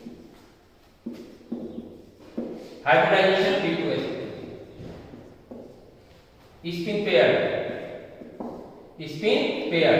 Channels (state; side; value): identical; both; correlation 1.00